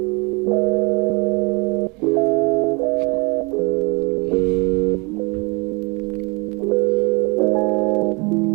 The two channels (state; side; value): quieter; left; 29.3 dB